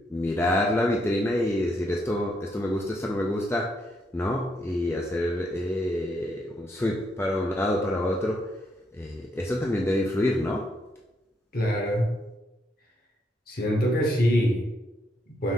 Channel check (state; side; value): normal; both; correlation 0.76